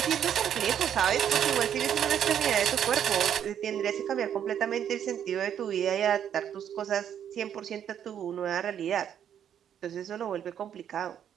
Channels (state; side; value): quieter; left; 9.3 dB